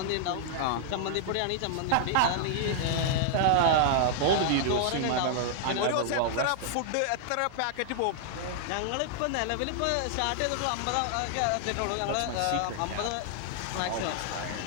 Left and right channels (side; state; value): both; different; correlation -0.01